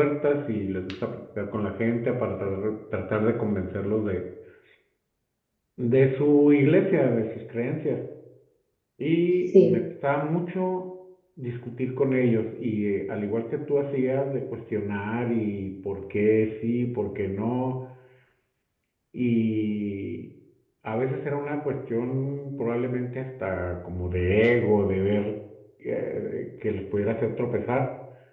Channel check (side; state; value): both; identical; correlation 1.00